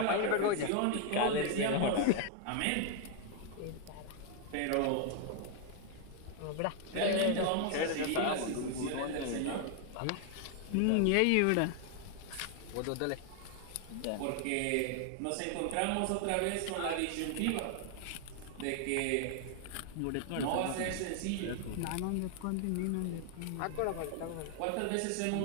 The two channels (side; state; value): both; different; correlation 0.00